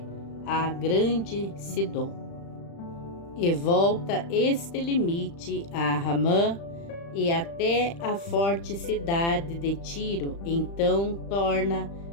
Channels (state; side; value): late; right; 35 ms